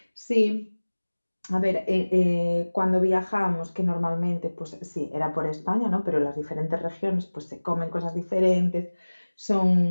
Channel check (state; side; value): inverted; both; correlation -1.00